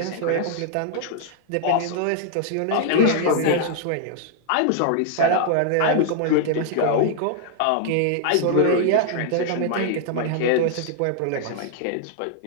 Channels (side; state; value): both; different; correlation 0.00